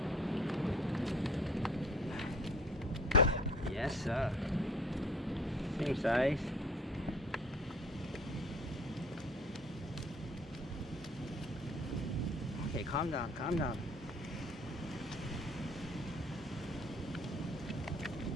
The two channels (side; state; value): both; normal; correlation 0.52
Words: Yes, sir. Same size. Okay, calm down, calm down.